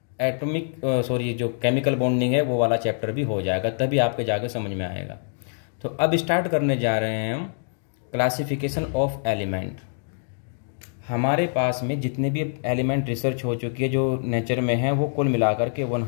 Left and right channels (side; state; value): right; silent; digital silence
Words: जो केमिकल बॉन्डिंग है वो वाला चैप्टर भी हो जाएगा, तभी आपके जाके समझ में आएगा। तो अब स्टार्ट करने जा रहे हैं हम क्लासिफिकेशन ऑफ एलिमेंट। हमारे पास में जितने भी एलिमेंट रिसर्च हो चुकी है जो नेचर में है वो कुल मिलाकर के